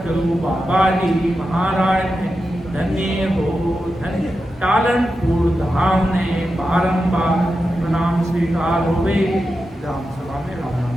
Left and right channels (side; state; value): both; normal; correlation 0.90